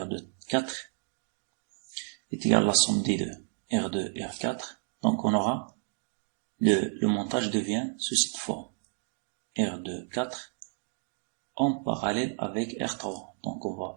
4 est égal à la somme des deux, R2 et R4. Donc on aura, le montage devient sous cette forme, R2 4 en parallèle avec R3. Donc on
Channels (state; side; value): silent; left; 57 dB below the other